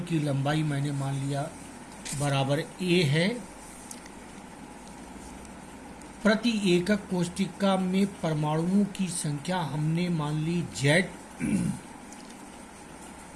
की लंबाई मैंने मान लिया बराबर a है। प्रति एकक कोशिका में परमाणुओं की संख्या हमने मान ली Z।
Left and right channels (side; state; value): both; identical; correlation 1.00